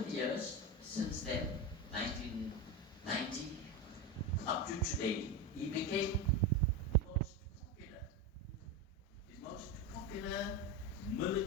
years, since then, 1990, up to today, he became the most popular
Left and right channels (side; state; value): both; normal; correlation 0.18